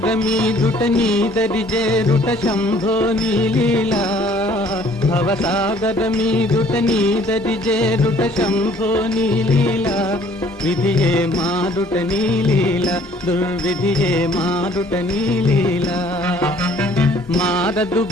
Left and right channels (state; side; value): normal; both; correlation 0.58